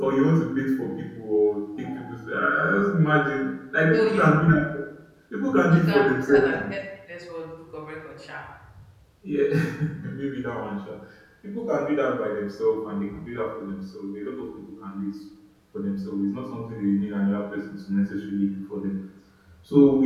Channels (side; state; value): both; identical; correlation 1.00